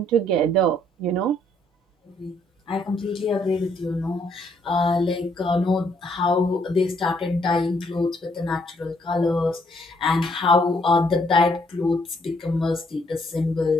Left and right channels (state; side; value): normal; both; correlation 0.69